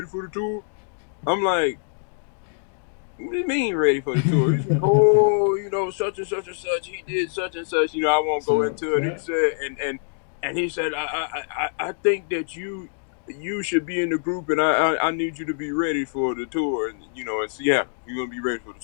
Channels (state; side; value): silent; right; digital silence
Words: for the tour?" I'm like, "What do you mean ready for the tour?" He's like, "Oh, such and such and such. He did such and such. I won't go into it." He said, and he said, I think that you should be in the group, and I need you to be ready for the tour, and in Seattle, you're gonna be ready for the